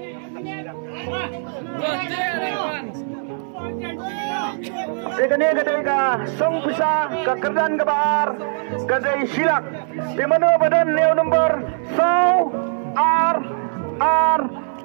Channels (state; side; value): silent; left; digital silence